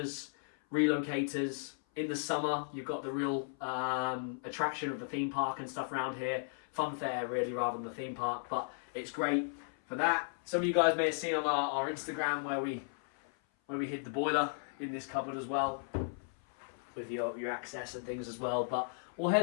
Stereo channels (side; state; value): right; silent; 54 dB below the other